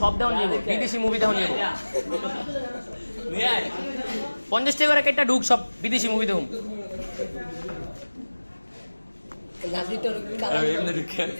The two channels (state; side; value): inverted; both; correlation -1.00